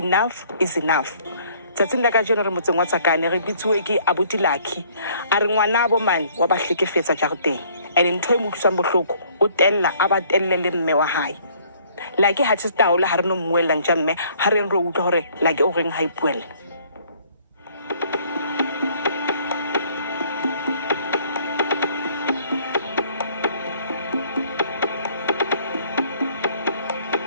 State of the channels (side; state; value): both; inverted; correlation -0.60